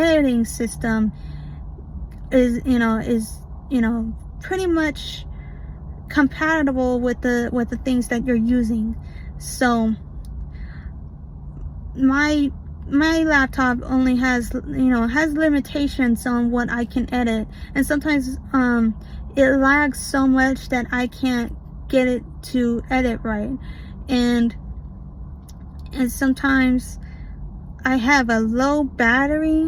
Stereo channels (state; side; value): identical; both; correlation 1.00